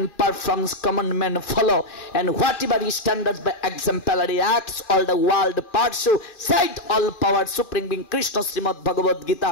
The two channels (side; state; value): right; late; 2.4 ms